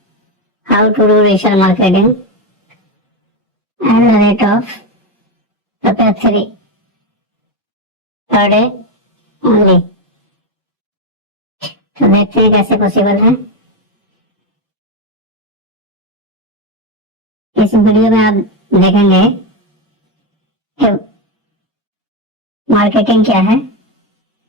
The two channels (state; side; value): normal; both; correlation 0.10